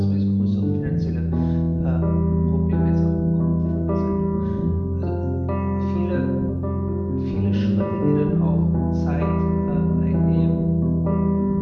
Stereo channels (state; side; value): identical; both; correlation 1.00